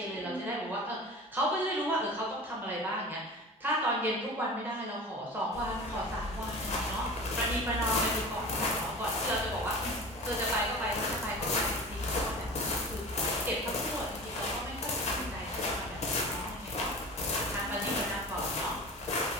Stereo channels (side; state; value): both; normal; correlation 0.35